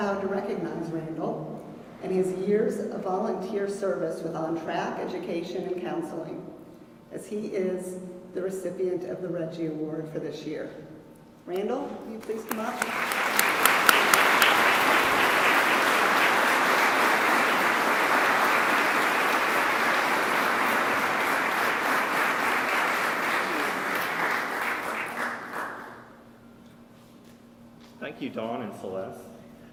to recognize Randall and his years of volunteer service with Ontrack Education and Counseling, as he is the recipient of the Reggie Award for this year. Randall, will you please come up? Thank you, Dawn and Celeste.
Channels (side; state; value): both; identical; correlation 1.00